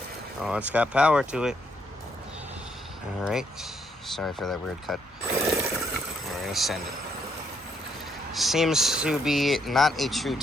Oh, it's got power to it. Alright. Sorry for that weird cut. We're gonna send it. Seems to be not a true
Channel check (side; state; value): both; normal; correlation 0.73